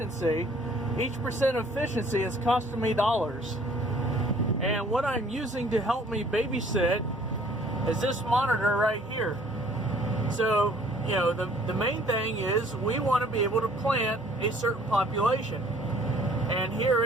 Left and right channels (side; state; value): both; normal; correlation 0.57